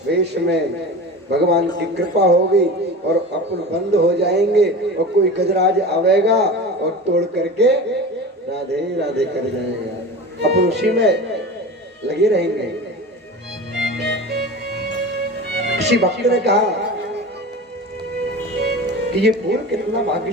वेश में भगवान की कृपा होगी और अपन बंद हो जाएंगे, और कोई गजराज आवेगा और तोड़ करके राधे राधे कर जाएगा। अपन उसी में लगे रहेंगे। किसी भक्त ने कहा कि ये फूल कितना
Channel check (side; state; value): both; normal; correlation 0.32